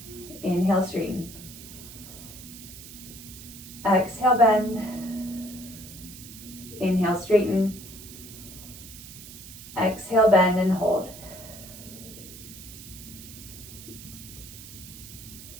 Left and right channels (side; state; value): right; noise; hiss, 15 dB below the sound